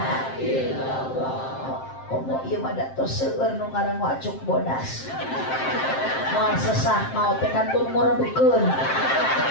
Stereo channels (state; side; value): late; right; 7.6 ms